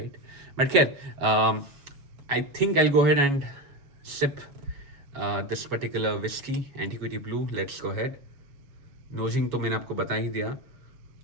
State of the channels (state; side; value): late; left; 7.2 ms